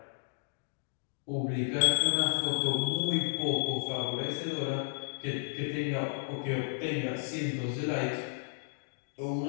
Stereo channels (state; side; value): silent; right; digital silence